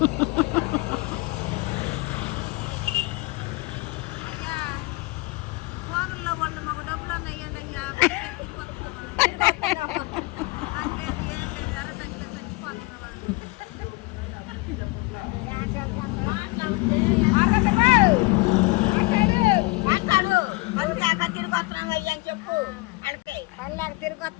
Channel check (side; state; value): right; quieter; 24.2 dB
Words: ఫోన్లో వాళ్ళు మాకు డబ్బులు అన్నయ్యండి అయ్యా. తిరిగి వస్తున్నాం అయ్యా అని చెప్పు. వాళ్ళకి పల్లెకి తిరిగి